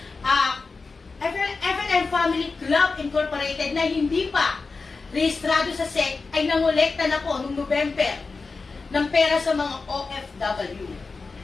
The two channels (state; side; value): quieter; right; 4.2 dB